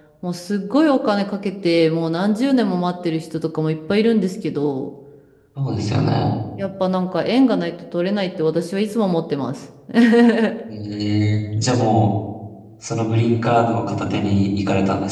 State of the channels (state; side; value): identical; both; correlation 1.00